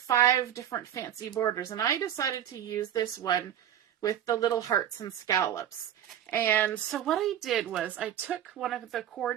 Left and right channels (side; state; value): left; quieter; 10.5 dB